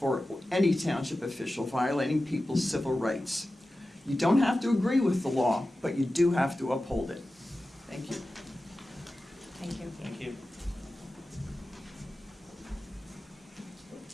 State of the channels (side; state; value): both; normal; correlation 0.94